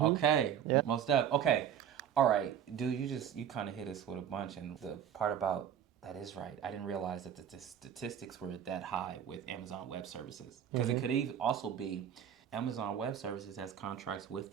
Yep. Most up. Okay. All right, dude. You kind of hit us with a bunch, and the part about that is right. I didn't realize that the statistics were that high with Amazon Web Services, because it could even also be Amazon Web Services has contracts with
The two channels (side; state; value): left; quieter; 9.1 dB